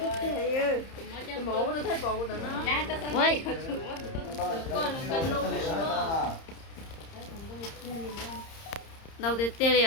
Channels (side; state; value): right; late; 30 ms